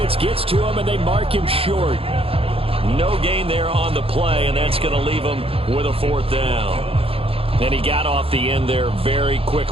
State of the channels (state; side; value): late; left; 0.27 ms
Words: gets to him, and they mark him short. No gain there on the play, and that's going to leave him with a 4th down. And he got off the end there very